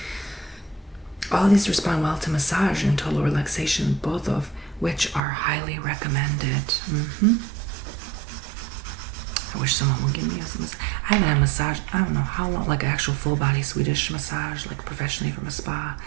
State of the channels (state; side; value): drops out; left; at 5.2 s